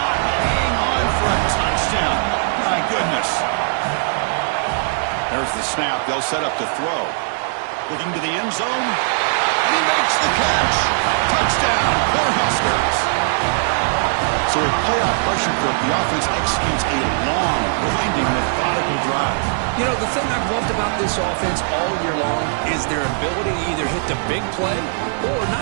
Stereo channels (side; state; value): left; silent; 66 dB below the other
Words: hang on for a touchdown. My goodness. There's the snap. They'll set up to throw. Looking to the end zone. And he makes the catch. Touchdown, Cornhuskers. So with playoff pressure for the offense executes a long, winding, methodical drive. You know, the thing I've loved about this offense all year long is their ability to either hit the big play or